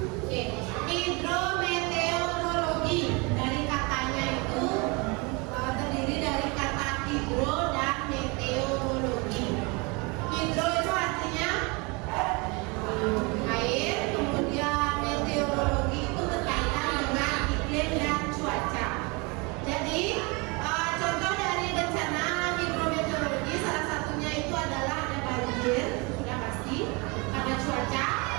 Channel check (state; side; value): quieter; left; 28.6 dB